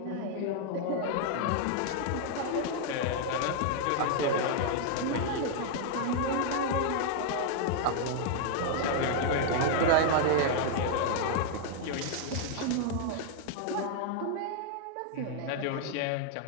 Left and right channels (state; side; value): different; both; correlation 0.00